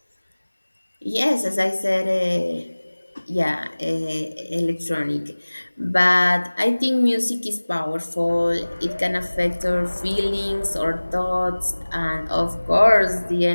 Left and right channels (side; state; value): both; inverted; correlation -1.00